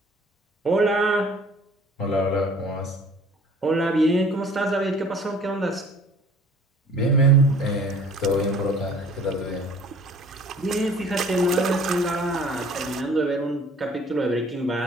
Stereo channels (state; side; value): normal; both; correlation 0.52